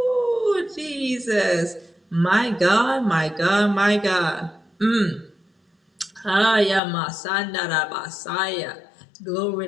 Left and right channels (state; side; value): drops out; right; at 6.8 s